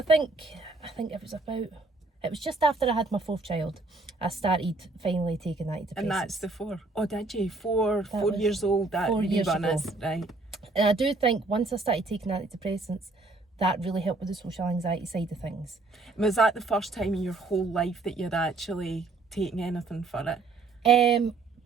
think it was just after I had my 4th child, I started finally taking antidepressants. And that's the 4. Oh, did you? 4 years old. That 4 years ago. Right. And I do think once I started taking antidepressants, that really helped with the social anxiety side of things. Was that the first time in your whole life that you'd actually taken anything for it?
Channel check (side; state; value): left; quieter; 3.5 dB